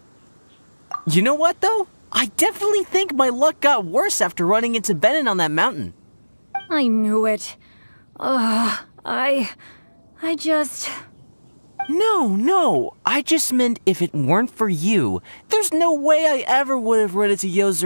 You know what, though? I definitely think my luck got worse after running into Benin on that mountain. I knew it. I just... No. I just meant if it weren't for you, there's no way I ever would have run into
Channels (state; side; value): inverted; both; correlation -1.00